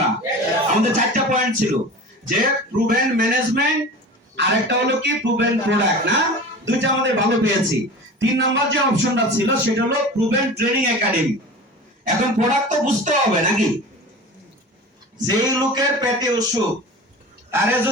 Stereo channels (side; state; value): both; normal; correlation 0.35